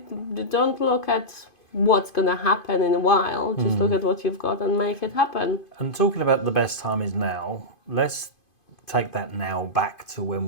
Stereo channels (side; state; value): right; late; 2.5 ms